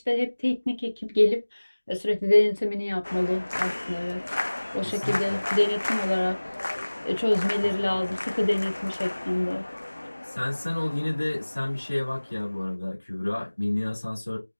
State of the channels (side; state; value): both; inverted; correlation -1.00